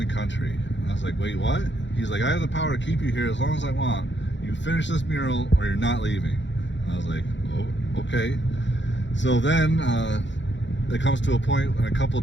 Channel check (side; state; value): right; late; 0.53 ms